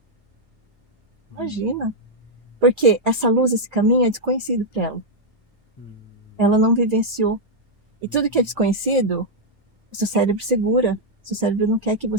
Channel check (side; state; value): left; late; 2.2 ms